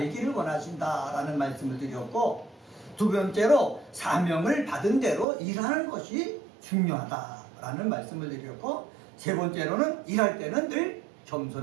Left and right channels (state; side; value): drops out; left; at 5.2 s